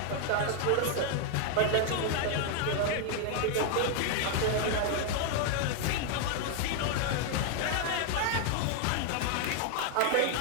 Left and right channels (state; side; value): different; both; correlation 0.00